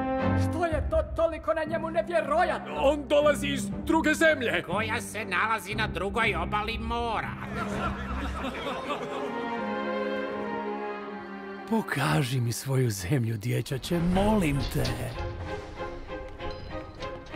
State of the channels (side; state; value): both; identical; correlation 1.00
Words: Što je to toliko na njemu nevjerojatno? On dolazi iz druge zemlje. Koja se nalazi na drugoj obali mora. Pokaži mi svoju zemlju, dječače, molim te.